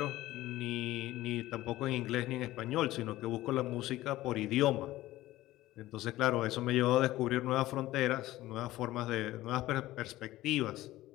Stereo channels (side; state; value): right; quieter; 16.3 dB